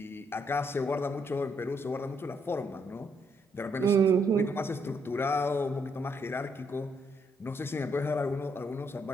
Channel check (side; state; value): both; normal; correlation 0.74